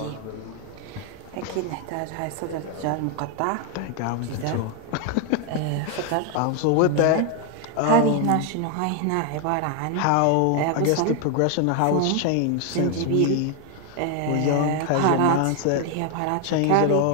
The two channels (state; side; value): different; both; correlation 0.01